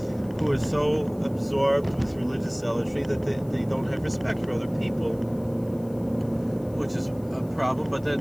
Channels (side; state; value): left; noise; hiss, 27 dB below the sound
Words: are so absorbed with religious zealotry that they don't have respect for other people, which is a problem. But then